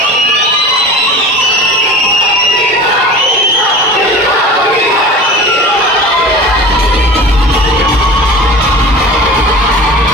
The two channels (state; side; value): normal; both; correlation 0.37